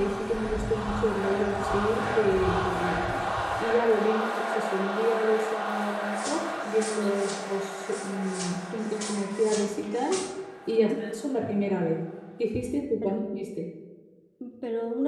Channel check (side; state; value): both; identical; correlation 1.00